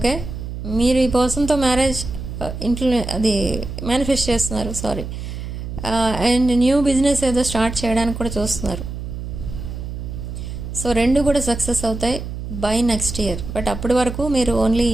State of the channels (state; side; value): noise; right; hum, 7 dB below the sound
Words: మీరు ఈ పర్సన్తో మ్యారేజ్ ఇంట్లో అది మేనిఫెస్ట్ చేస్తున్నారు, అండ్ న్యూ బిజినెస్ ఏదో స్టార్ట్ చేయడానికి కూడా చూస్తున్నారు. సో 2 కూడా సక్సెస్ అవుతాయి బై నెక్స్ట్ ఇయర్. బట్ అప్పటి వరకు మీరు ఓన్లీ